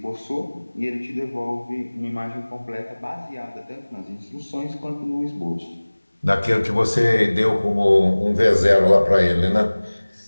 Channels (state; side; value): inverted; both; correlation -1.00